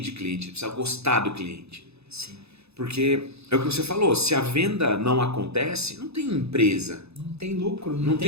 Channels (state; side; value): late; left; 0.79 ms